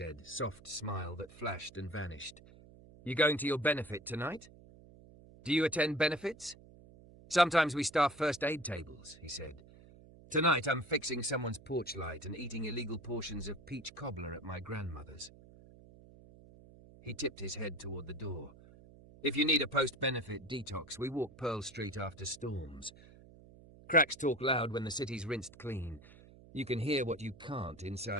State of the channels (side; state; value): right; noise; hum, 21 dB below the sound